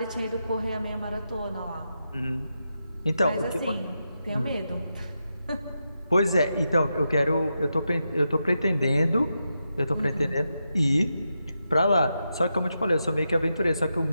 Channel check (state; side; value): inverted; both; correlation -0.87